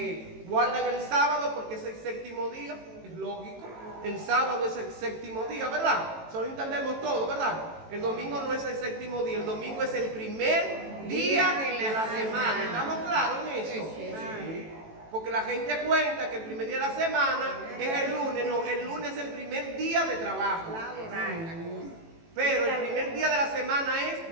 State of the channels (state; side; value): late; left; 18 ms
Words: Guardan el sábado porque es el séptimo día. Es lógico, el sábado es el séptimo día, ¿verdad? Solo entendemos todo, ¿verdad? El domingo no es el séptimo día, el domingo es el primer día de la semana. ¿Estamos claros en eso? Sí. Porque la gente cuenta que el primer día de la semana es el lunes. No, el lunes es el primer día de trabajo. Pero el primer día de la semana es